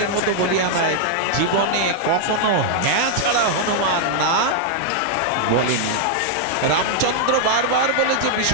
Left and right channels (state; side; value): different; both; correlation -0.01